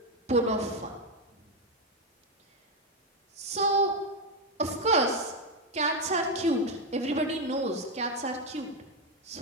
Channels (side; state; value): both; normal; correlation 0.06